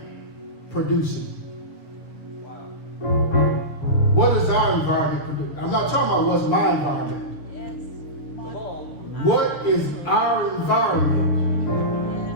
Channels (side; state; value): right; late; 6.6 ms